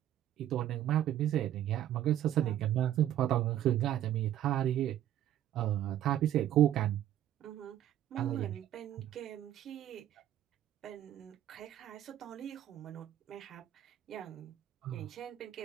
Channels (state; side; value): quieter; left; 12.1 dB